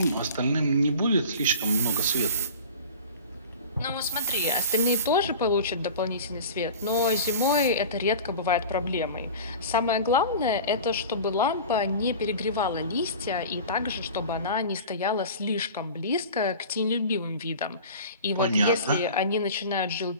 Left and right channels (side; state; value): both; inverted; correlation -0.37